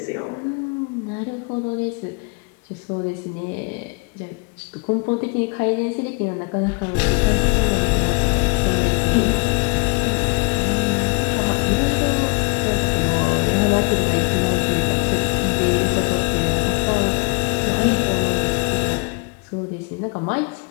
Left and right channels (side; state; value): right; quieter; 32.0 dB